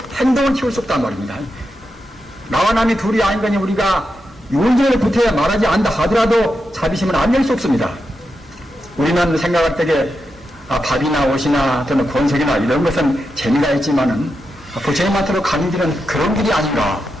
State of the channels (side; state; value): both; normal; correlation 0.87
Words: 행동을 키울 수 없단 말입니다. 나와 남이 둘이 아닌 거니 우리가 윤전을 붙어야 말하지 않다 하더라도 자비심은 안 낼 수 없습니다. 우리는 생각할 때에 밥이나 옷이나 또는 권색이나 이런 것은 재미가 있지만은 부처님한테로 가는 길은 그런 길이 아닌가